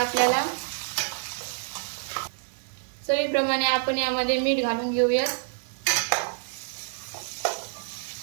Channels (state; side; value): silent; left; digital silence